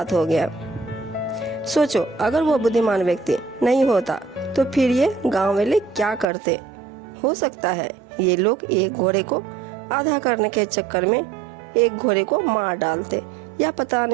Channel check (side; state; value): left; drops out; at 6.2 s